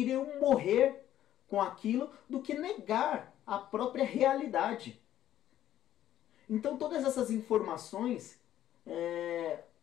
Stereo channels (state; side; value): quieter; right; 12.1 dB